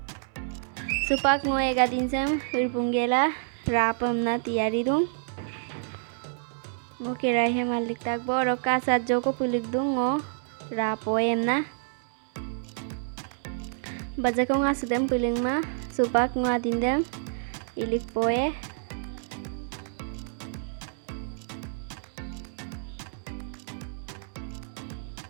supak ngo egadin sam irpunggela ra pemna tiyari dung ngo kerai he malik takbo roka sajjo ko pulik dung ngo ra poem na Baca ko nga sudem piling ma supak nga dindem ilik poe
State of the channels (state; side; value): silent; left; digital silence